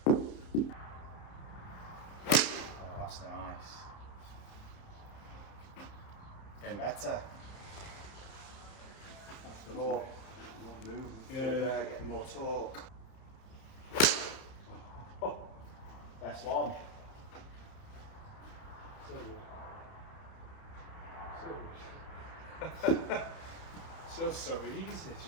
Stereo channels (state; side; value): late; right; 31 ms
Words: Oh, that's nice. Getting better. More movement. Yeah. Getting more torque. Oh, best one. So good. So easy,